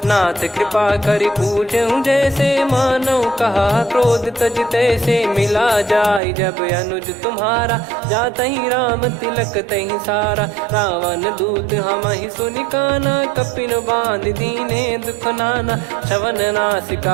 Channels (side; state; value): left; drops out; at 6.2 s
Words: नाथ कृपा करि पूछूं जैसे मानव कहा क्रोध तज तैसे मिला जाय जब अनुज तुम्हारा जात ही राम तिलक तही सारा रावण दूत हम ही सुनि काना कपिन बांध दीने दुख नाना श्रवण